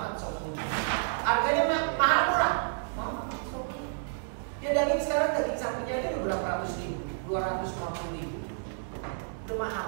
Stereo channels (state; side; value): silent; left; digital silence